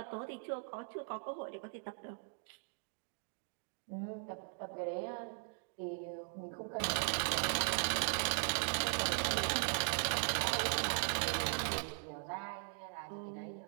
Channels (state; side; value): silent; left; 52 dB below the other